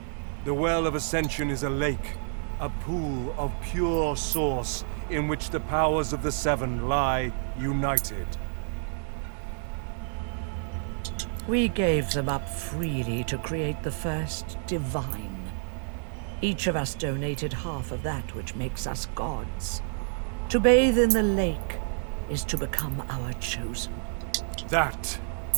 The Well of Ascension is a lake, a pool of pure source in which the powers of the Seven lie united. We gave them up freely to create the first divine. Each of us donated half of that which makes us gods. To bathe in the lake is to become our chosen. That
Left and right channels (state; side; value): silent; left; digital silence